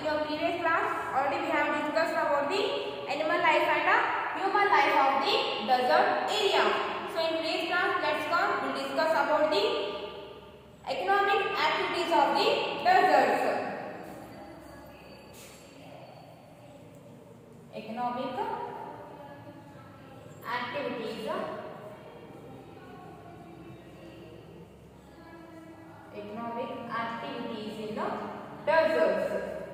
your previous class already we have discussed about the animal life and human life of the desert area. So in today's class we'll discuss about the economic activities of the deserts. Economic activities in the deserts.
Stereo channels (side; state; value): both; identical; correlation 1.00